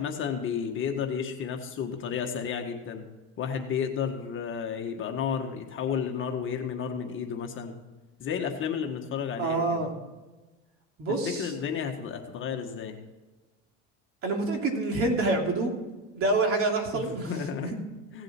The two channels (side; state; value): both; normal; correlation 0.16